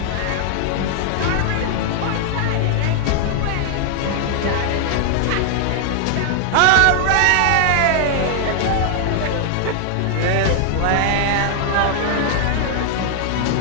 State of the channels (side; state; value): both; different; correlation 0.00